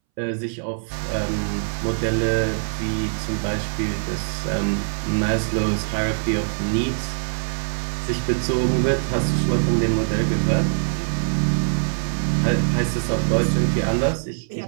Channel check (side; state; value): left; silent; 64 dB below the other